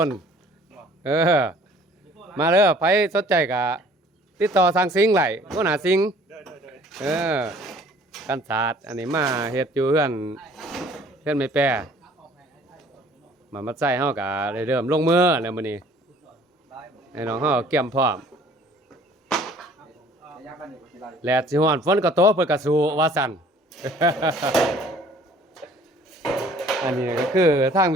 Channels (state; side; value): normal; both; correlation 0.54